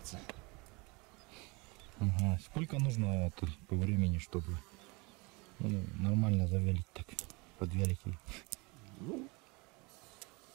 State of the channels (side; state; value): left; quieter; 27.3 dB